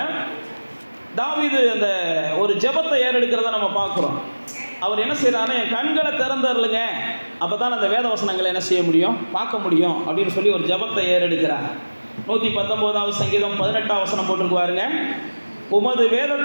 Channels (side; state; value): both; inverted; correlation -1.00